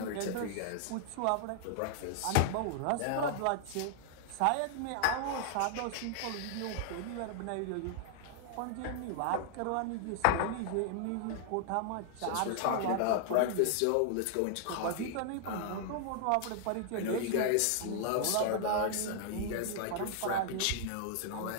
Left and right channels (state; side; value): different; both; correlation -0.01